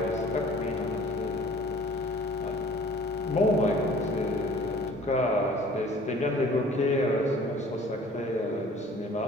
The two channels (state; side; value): normal; both; correlation 0.50